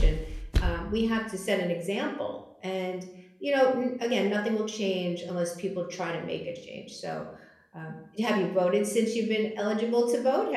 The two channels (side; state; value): both; identical; correlation 1.00